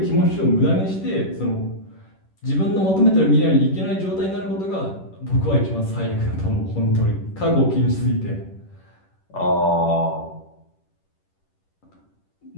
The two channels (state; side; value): late; right; 10 ms